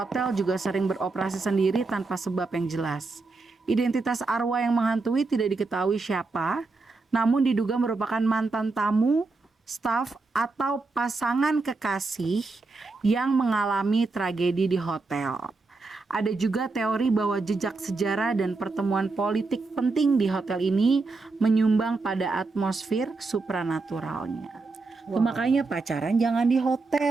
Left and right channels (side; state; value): left; quieter; 3.8 dB